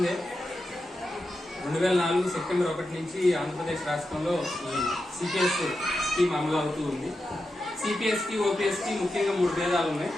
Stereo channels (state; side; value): normal; both; correlation 0.89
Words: 2004 సెప్టెంబర్ 1 నుంచి ఆంధ్రప్రదేశ్ రాష్ట్రంలో ఈ సిపిఎస్ స్కీమ్ అమలు అవుతూ ఉంది. సిపిఎస్ కి ఓపీఎస్ కి ముఖ్యంగా 3 భేదాలు ఉన్నాయి: